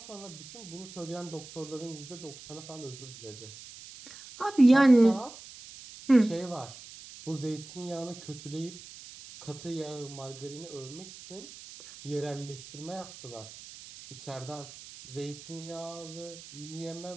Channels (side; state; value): right; noise; hiss, 16 dB below the sound